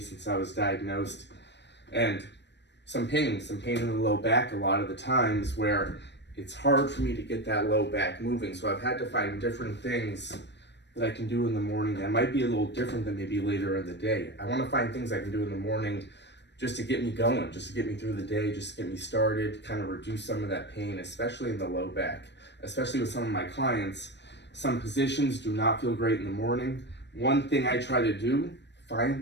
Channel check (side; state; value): right; late; 0.51 ms